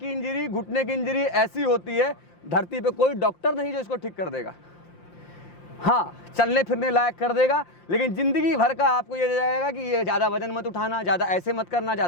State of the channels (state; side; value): late; right; 5.7 ms